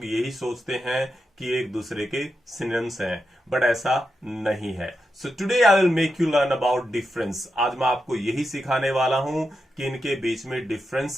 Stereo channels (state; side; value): normal; both; correlation 0.88